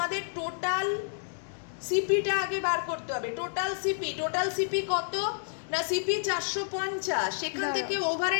টোটাল সিপিটা আগে বার করতে হবে। টোটাল সিপি কত না, সিপি 450, সেখান থেকে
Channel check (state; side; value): silent; right; digital silence